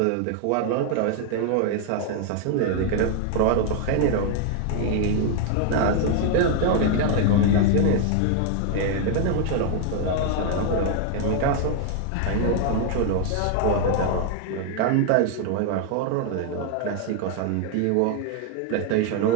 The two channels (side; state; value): both; different; correlation 0.00